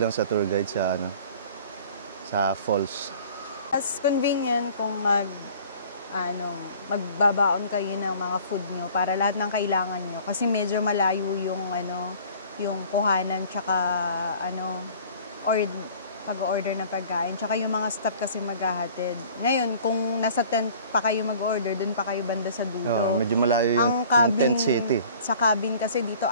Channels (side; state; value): both; inverted; correlation -0.49